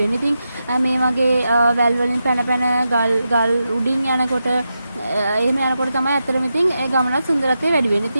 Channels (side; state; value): both; inverted; correlation -0.88